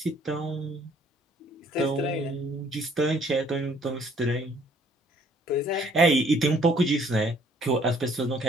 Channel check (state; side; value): normal; both; correlation 0.61